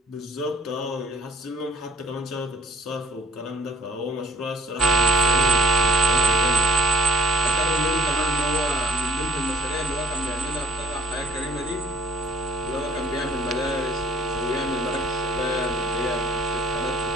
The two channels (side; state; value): both; normal; correlation 0.54